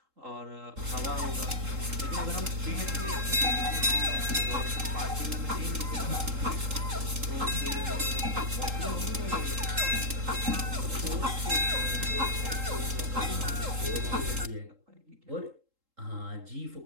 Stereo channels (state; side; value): late; left; 3.8 ms